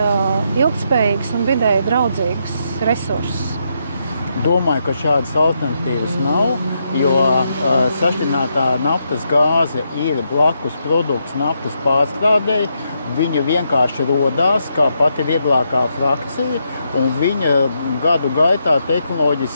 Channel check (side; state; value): both; inverted; correlation -0.80